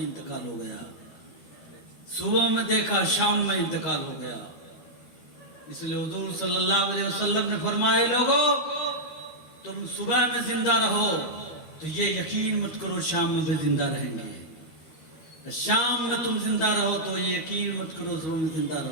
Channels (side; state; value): right; late; 13 ms